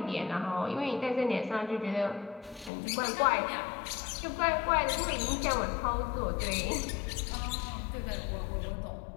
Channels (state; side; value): drops out; right; at 2.7 s